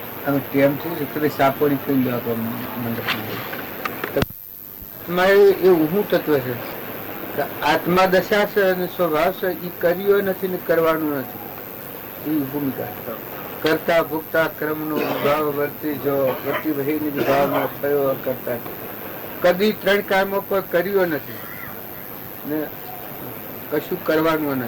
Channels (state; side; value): identical; both; correlation 1.00